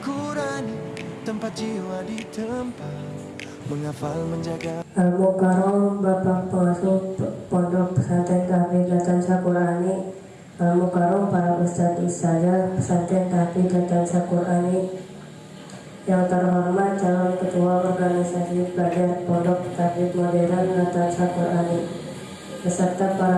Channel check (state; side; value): identical; both; correlation 1.00